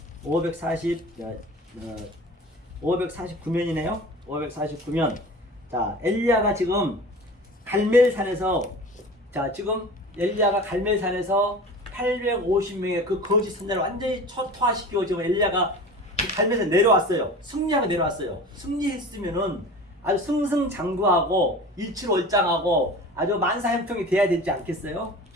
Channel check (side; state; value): both; normal; correlation 0.37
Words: 549면이네요. 549면. 자, 엘리야가 지금 갈멜산에서 지금 엘리야가 갈멜산에서 850명의 그 거짓 선자를 완전히 초토화시키고 지금 엘리야가 갈멜산 내려왔어요. 승리하고 내려왔어요. 승리했으면은 아주 승승장구하고 일치월장하고 아주 만사형통이 돼야 되지 않겠어요?